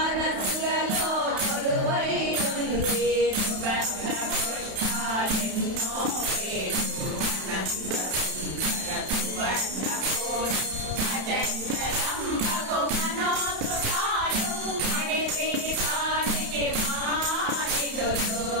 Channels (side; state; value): left; late; 31 ms